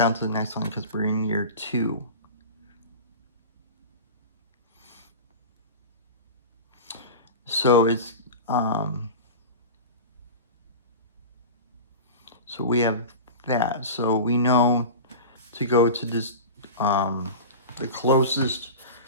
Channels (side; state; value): both; inverted; correlation -0.30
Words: to the next one because we're in year 2. So it's so we have that. So we know to go to this the closest.